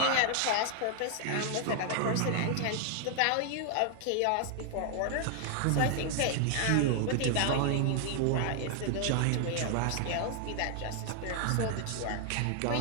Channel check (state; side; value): different; both; correlation 0.00